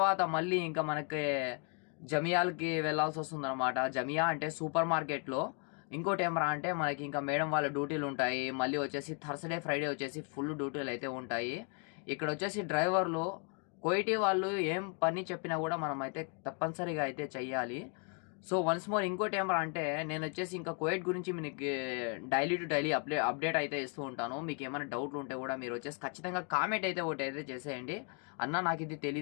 మళ్ళీ ఇంకా మనకి జమియాలకి వెళ్ళాల్సి వస్తుంది అనమాట. జమియా అంటే సూపర్ మార్కెట్లో. ఇంకోటి ఏమరా అంటే మనకి ఇంకా మేడం వాళ్ళ డ్యూటీలు ఉంటాయి. మళ్ళీ వచ్చేసి థర్స్డే ఫ్రైడే వచ్చేసి ఫుల్ డ్యూటీలు అయితే ఉంటాయి. ఇక్కడ వచ్చేసి డ్రైవర్లు కోయిటీ వాళ్ళు ఏం పని చెప్పినా కూడా మనం అయితే తప్పనిసరిగా అయితే చెయ్యాలి. సో వన్స్ మోర్ ఇంకోటి ఏమరా అంటే నేను వచ్చేసి ఇంకా కోయిట్ గురించి మీకు డైలీ టు డైలీ అప్డేట్ అయితే ఇస్తూ ఉంటాను. మీకు ఏమైనా డౌట్లు ఉంటే కూడా మీరు వచ్చేసి ఖచ్చితంగా కామెంట్ అయితే ఒకటి అయితే చేసేయండి. అన్న నాకు ఇది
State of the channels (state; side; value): quieter; right; 35.5 dB